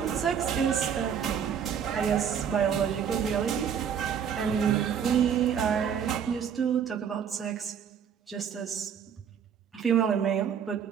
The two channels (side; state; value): left; quieter; 7.9 dB